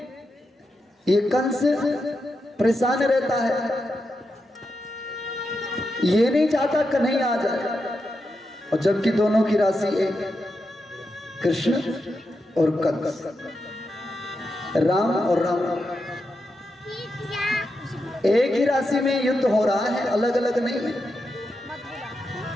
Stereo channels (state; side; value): normal; both; correlation 0.86